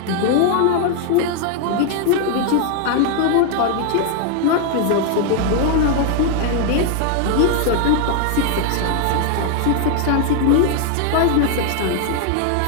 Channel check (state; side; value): different; both; correlation 0.00